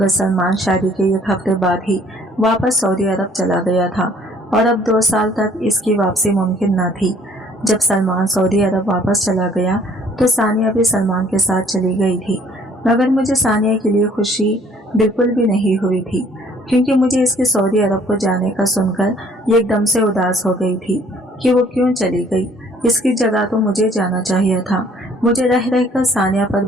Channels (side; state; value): both; normal; correlation 0.58